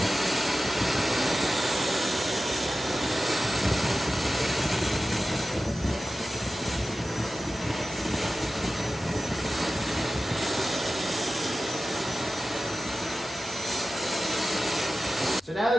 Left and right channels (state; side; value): normal; both; correlation 0.94